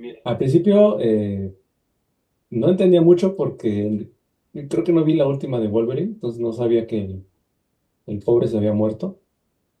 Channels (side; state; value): both; identical; correlation 1.00